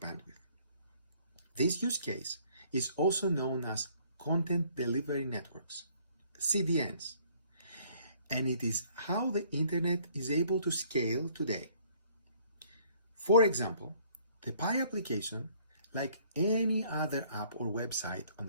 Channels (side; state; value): both; inverted; correlation -0.60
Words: This use case is also known as Content Delivery Networks, CDNs, and it is how the internet is able to scale today. For example, the Pi application, like any other app or website on